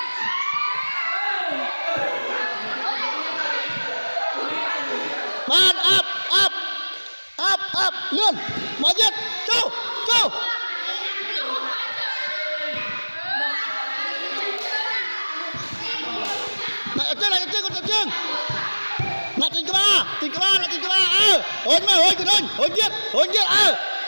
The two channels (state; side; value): inverted; both; correlation -1.00